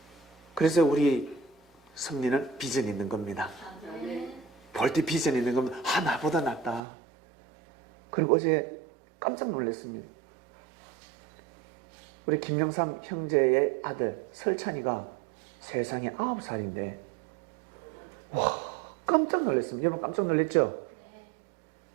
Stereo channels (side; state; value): left; drops out; at 6.8 s